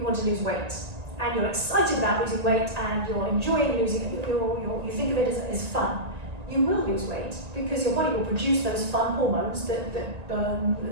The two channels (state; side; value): late; left; 1.9 ms